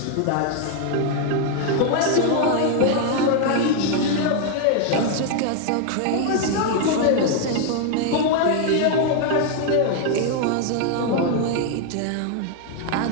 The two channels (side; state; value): both; different; correlation 0.00